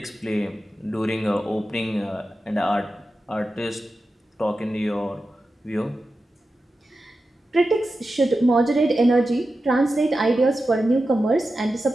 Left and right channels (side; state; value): both; normal; correlation 0.92